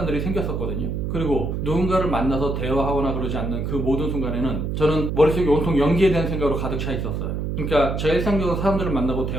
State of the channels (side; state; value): right; noise; hum, 2 dB below the sound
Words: 생겼었거든요. 그리고 누군가를 만나서 대화하거나 그러지 않는 그 모든 순간에는 저는 머릿속에 온통 연기에 대한 생각으로 가득 차 있었어요. 그러니까 제가 일상적으로 사람들을 만나고